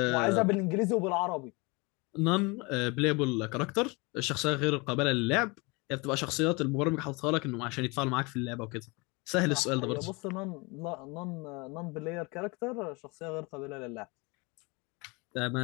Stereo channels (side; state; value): right; quieter; 27.4 dB